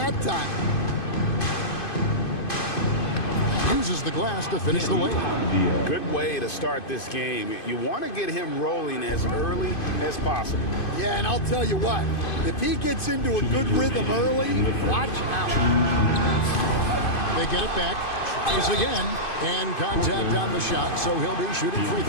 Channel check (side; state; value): right; late; 2.5 ms